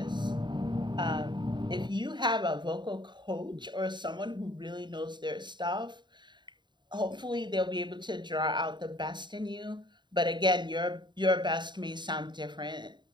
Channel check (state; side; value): late; left; 0.22 ms